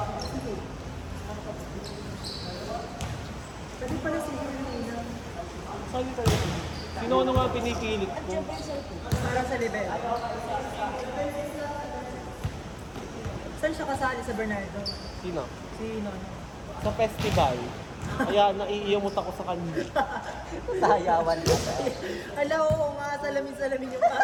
Pwede pala si Helena. Saan yung talaga? Sino ano nga pinipilit ko? Para sa level. Saan siya kasali sa Bernardo? Sino? Si Nono. Sa festival. Kaya naiiyamot ako sa kanya. Sayawan ka. Ala, oo nga, salamin-salamin yung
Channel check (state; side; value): identical; both; correlation 1.00